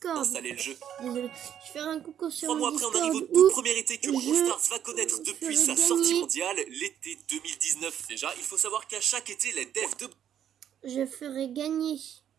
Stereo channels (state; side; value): quieter; left; 9.8 dB